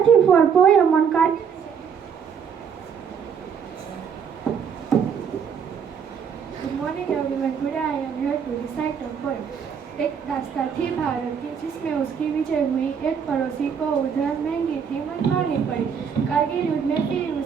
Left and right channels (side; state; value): left; quieter; 7.0 dB